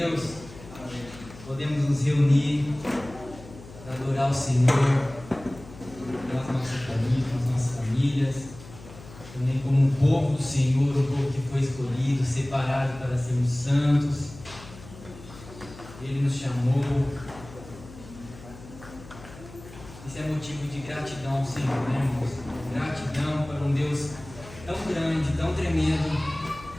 podemos nos reunir para adorar o Senhor, com as nossas famílias, também como um povo do Senhor, um povo que foi escolhido, separado para sermos santos. Ele nos chamou. Isso é motivo de gratidão ao Senhor, né, irmãos? Gratidão para um Deus tão grande, tão tremendo.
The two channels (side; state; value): left; noise; hum, 17 dB below the sound